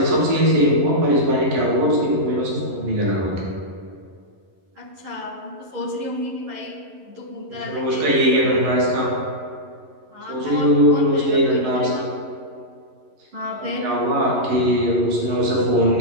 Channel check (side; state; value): left; late; 11 ms